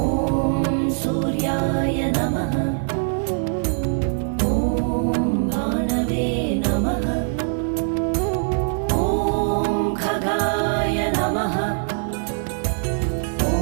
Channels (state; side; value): silent; left; digital silence